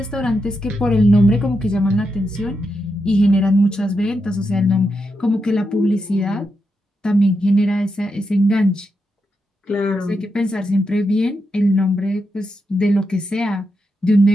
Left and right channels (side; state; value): both; normal; correlation 0.85